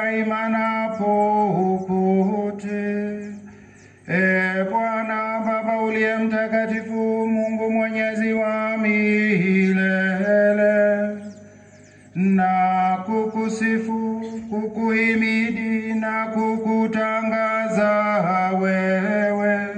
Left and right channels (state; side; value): identical; both; correlation 1.00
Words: na popote. Bwana Baba uliye mtakatifu, Mungu mwenyezi wa milele, na kukusifu, kukuhimidi na kukutangaza wewe